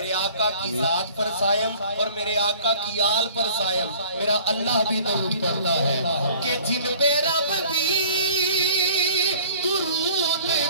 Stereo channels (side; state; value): both; inverted; correlation -0.49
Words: آقا کی ذات پر سائم اور میرے آقا کی آل پر سائم میرا اللہ بھی درود پڑھتا ہے کہ جن پہ رب دی درود